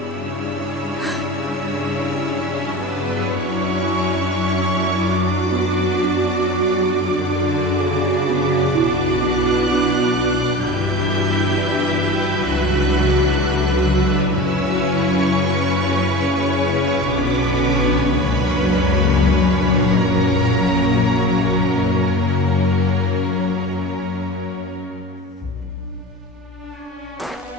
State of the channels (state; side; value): normal; both; correlation 0.36